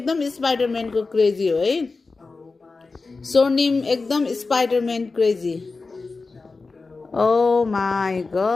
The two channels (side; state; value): right; quieter; 4.0 dB